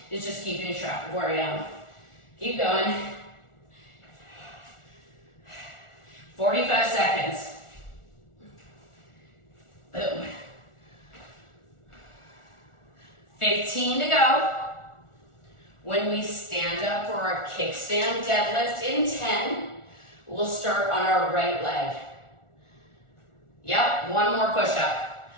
is just keeping track of where I am. Keep going. 45 seconds. Boom. 15 to go. When we stand up for our kickstand deadlift in 10, we'll start on our right leg. Yep, one more push-up.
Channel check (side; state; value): right; late; 1.4 ms